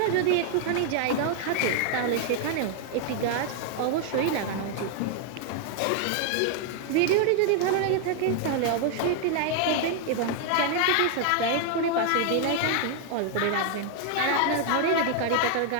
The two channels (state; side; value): different; both; correlation 0.00